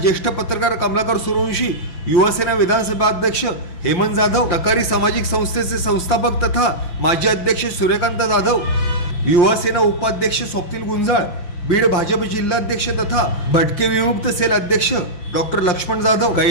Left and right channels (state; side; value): late; right; 5.8 ms